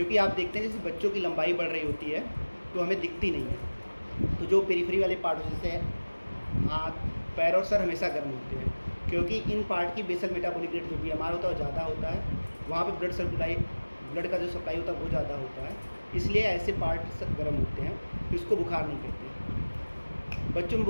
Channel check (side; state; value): both; inverted; correlation -1.00